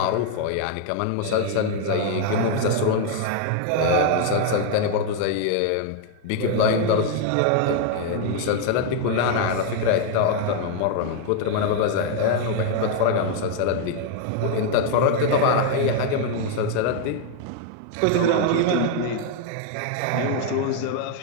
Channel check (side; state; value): both; different; correlation 0.00